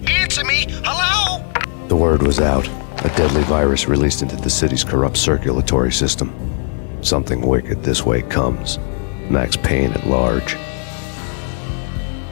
Answer me. Hello? The word was out. A deadly virus released into the city's corrupt circulatory system. Something wicked this way comes. Max Payne at large.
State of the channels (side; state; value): right; silent; 57 dB below the other